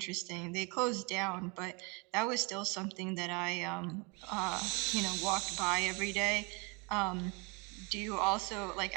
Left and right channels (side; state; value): left; quieter; 30.7 dB